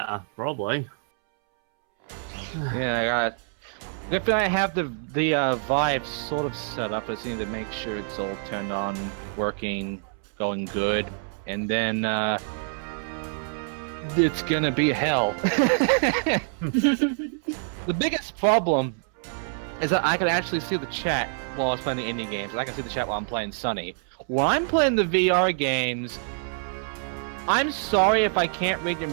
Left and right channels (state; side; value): silent; left; 61 dB below the other